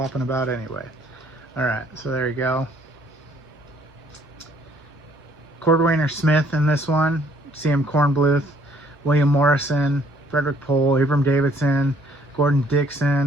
about anyway. All right, so there you go. Cordwainer Smith in this one, C.M. Kornbluth, William Morrison, Frederick Pohl, Abram Davidson, Gordon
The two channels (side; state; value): both; normal; correlation 0.62